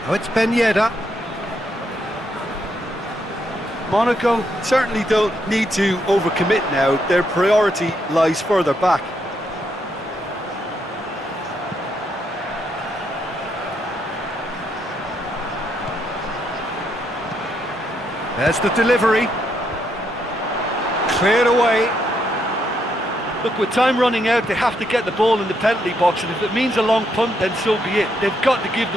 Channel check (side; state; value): both; normal; correlation 0.77